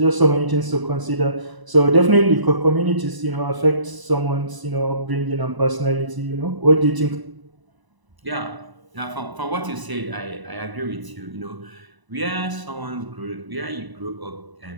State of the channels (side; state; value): left; late; 1.0 ms